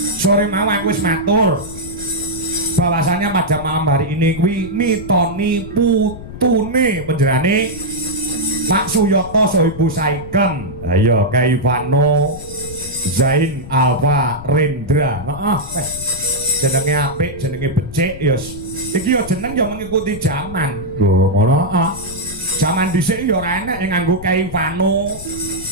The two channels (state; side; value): noise; left; rumble, 13 dB below the sound